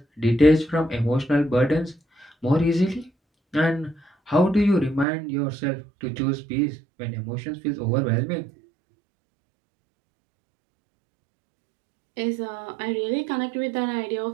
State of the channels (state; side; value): drops out; left; at 5.1 s